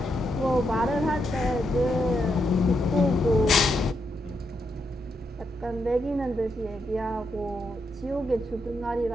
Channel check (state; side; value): normal; both; correlation 0.81